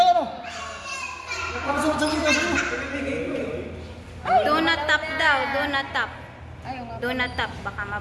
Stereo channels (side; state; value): both; identical; correlation 1.00